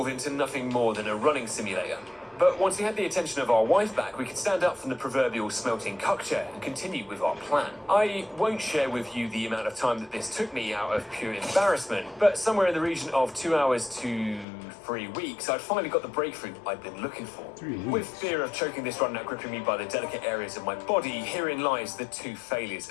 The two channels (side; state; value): right; drops out; at 14.5 s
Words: into nothing more than a running simulator. But once we had the attention of our wife back, we could stand up from the proverbial smelting cuck chair and continue with our plan. I won't share with you the amount of time that this took me out of pure embarrassment, but somewhere in the region of 2 hours to 3 weeks, I'd finally got the breakthrough I'd been looking for. With fear of choking this run out gripping me by the delicate areas of my body, herein lies the 2 failures